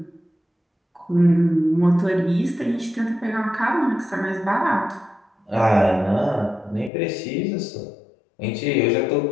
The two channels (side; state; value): right; drops out; at 6.9 s